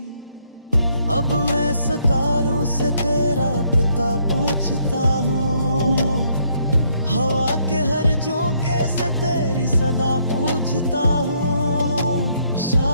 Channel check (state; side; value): inverted; both; correlation -0.70